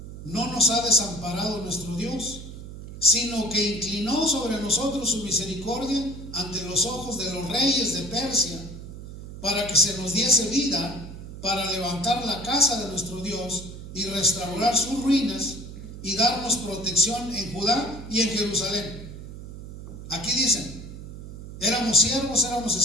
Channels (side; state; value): right; noise; hum, 12 dB below the sound